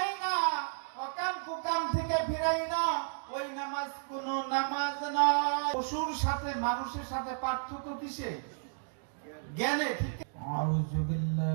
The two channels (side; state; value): left; silent; digital silence